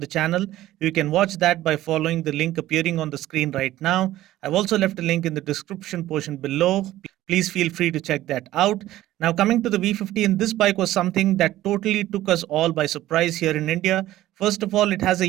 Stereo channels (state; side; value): quieter; left; 14.9 dB